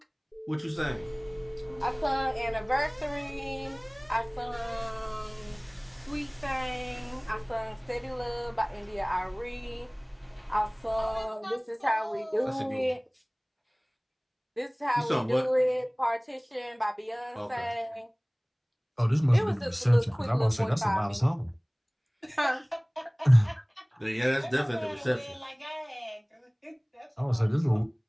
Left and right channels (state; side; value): identical; both; correlation 1.00